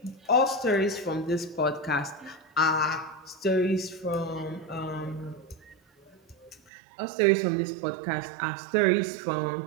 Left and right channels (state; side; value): drops out; left; at 6.7 s